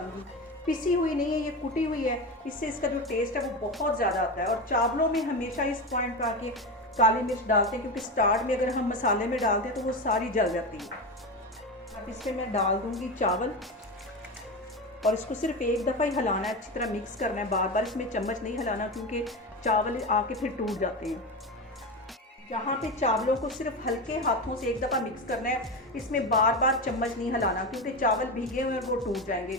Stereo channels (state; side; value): normal; both; correlation 0.20